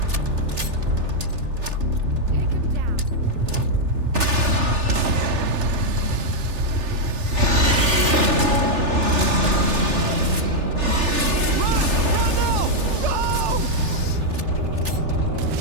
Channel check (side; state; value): left; late; 3.4 ms